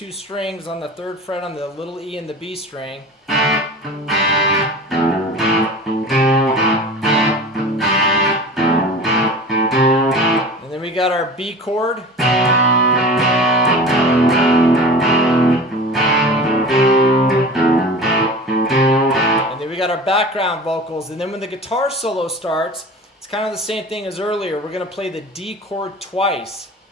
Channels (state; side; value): normal; both; correlation 0.36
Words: strings on the 3rd fret on the little E and the B string. And then we got our B chord. We got our background vocals, and then when the guitar solo starts, it's kind of the same thing as earlier. We're going to play the D chord twice.